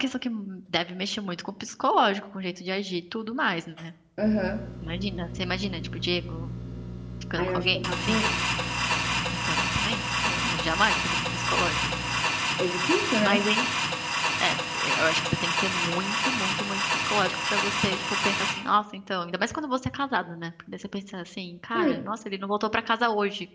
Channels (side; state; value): both; identical; correlation 1.00